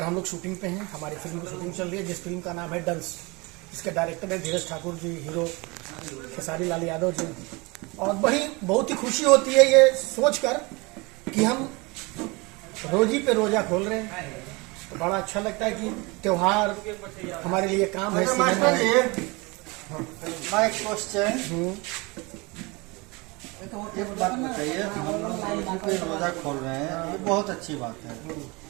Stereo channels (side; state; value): left; quieter; 26.1 dB